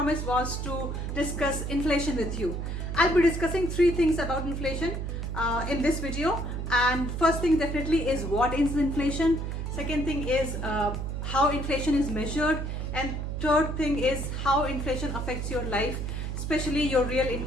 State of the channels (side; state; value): right; noise; hum, 4 dB below the sound